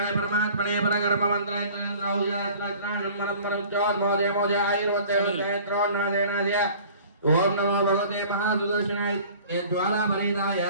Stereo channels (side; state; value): both; inverted; correlation -0.47